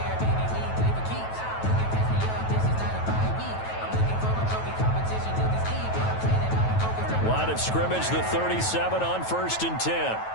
Line of scrimmage, the 37 on first and 10.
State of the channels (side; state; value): right; late; 9.2 ms